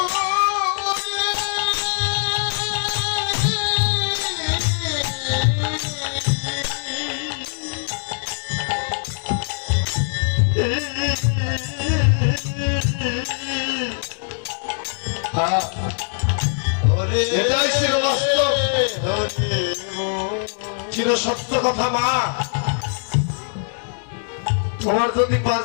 এটাই ছিল বাস্তব, চির সত্য কথা। মা, তোমার যদি 5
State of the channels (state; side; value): silent; right; digital silence